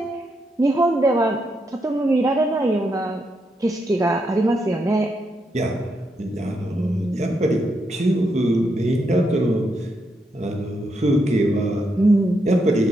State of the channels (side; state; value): both; normal; correlation 0.81